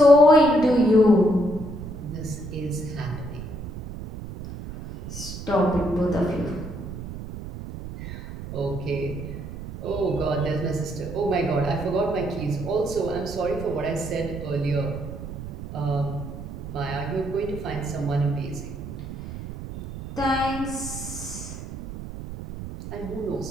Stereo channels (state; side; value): noise; right; rumble, 10 dB below the sound